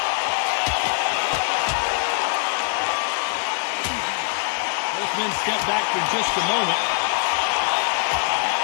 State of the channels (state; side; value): silent; right; 64 dB below the other